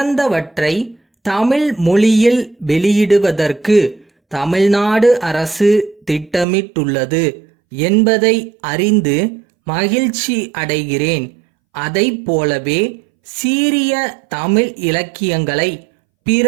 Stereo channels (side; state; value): left; drops out; at 6.5 s